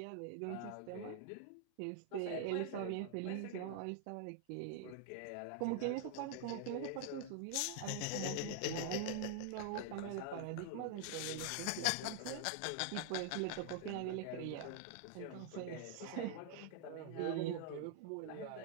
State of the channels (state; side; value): different; both; correlation -0.01